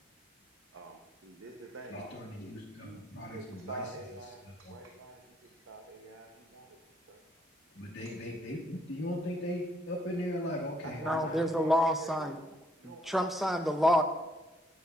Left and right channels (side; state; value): both; normal; correlation 0.70